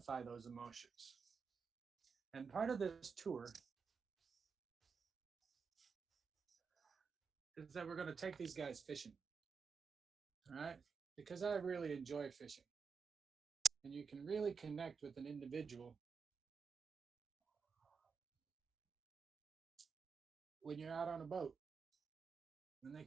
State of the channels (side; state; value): left; quieter; 5.6 dB